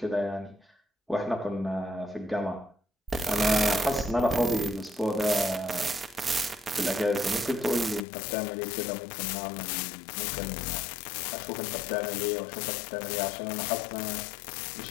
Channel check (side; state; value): right; drops out; at 8.0 s